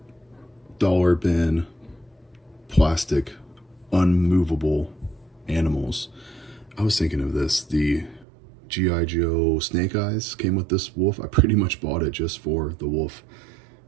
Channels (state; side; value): drops out; left; at 8.2 s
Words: dollar bin, plastic, unmovable animals. I was thinking of this. The G.I. Joe Snake Eyes came with this wolf. I pretty much bought it just for the wolf